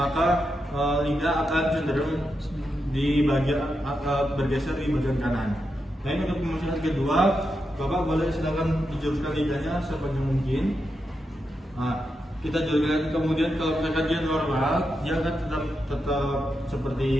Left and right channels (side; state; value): both; normal; correlation 0.86